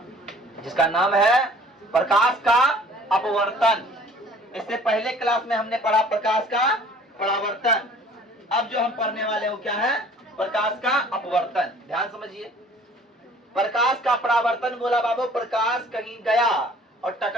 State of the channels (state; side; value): normal; both; correlation 0.52